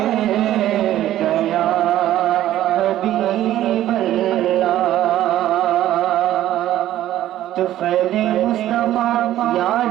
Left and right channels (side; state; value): left; quieter; 13.2 dB